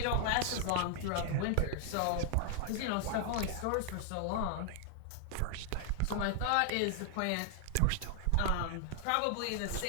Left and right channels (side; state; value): both; different; correlation 0.00